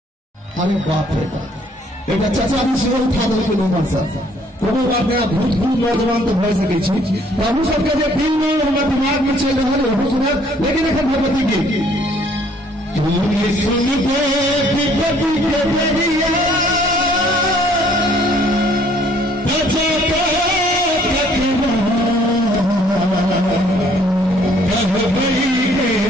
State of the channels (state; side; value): normal; both; correlation 0.61